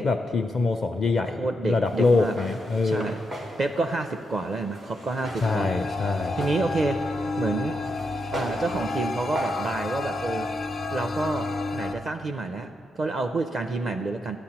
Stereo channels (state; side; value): normal; both; correlation 0.83